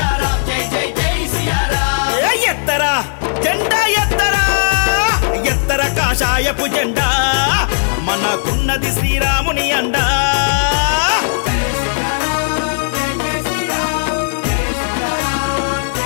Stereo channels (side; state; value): right; silent; digital silence